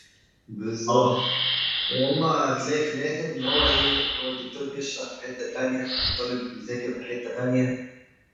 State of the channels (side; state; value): both; identical; correlation 1.00